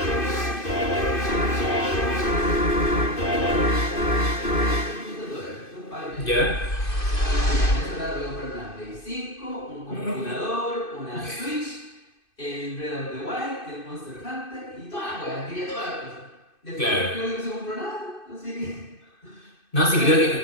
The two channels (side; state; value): right; late; 2.5 ms